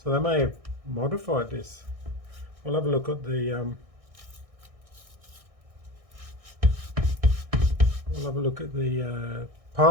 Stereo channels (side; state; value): left; late; 1.6 ms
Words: they may have modified this. We'll have a look at the